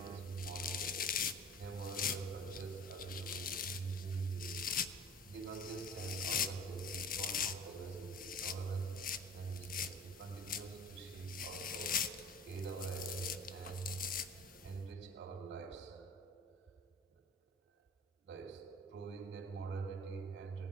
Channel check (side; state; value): both; normal; correlation 0.43